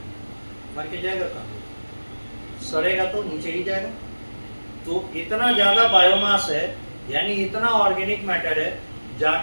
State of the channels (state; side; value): inverted; both; correlation -1.00